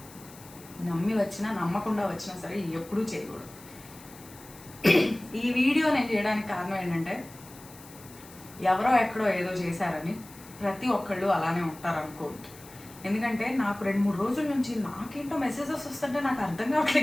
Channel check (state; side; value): noise; left; hiss, 20 dB below the sound